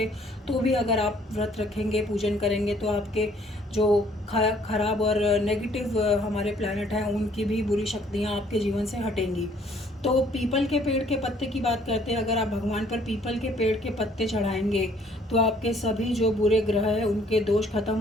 तो भी अगर आप व्रत रखेंगे, पूजन करेंगे तो आपके जो खराब और नेगेटिव हमारे प्लैनेट हैं उनकी भी बुरी शक्तियाँ आपके जीवन से हटेंगी। तो पीपल के पेड़ के पत्ते की बात करते हैं, अगर आप भगवान पर पीपल के पेड़ के पत्ते चढ़ाएंगे तो आपके सभी जो बुरे ग्रह हैं उनके दोष खत्म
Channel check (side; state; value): both; normal; correlation 0.61